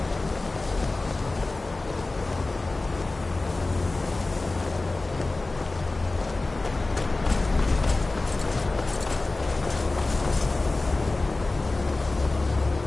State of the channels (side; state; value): right; quieter; 3.2 dB